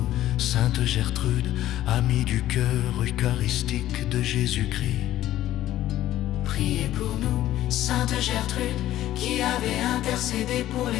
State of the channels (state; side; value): quieter; right; 13.7 dB